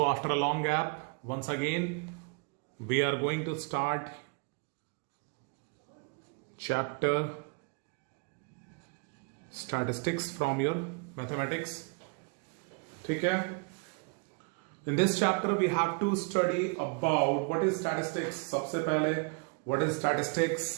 after a long gap, once again, we are going to start chapter statistics from your mathematics. ठीक है? In this chapter, we have to study about what is statistics. सबसे पहले what is statistics?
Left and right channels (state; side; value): quieter; left; 34.4 dB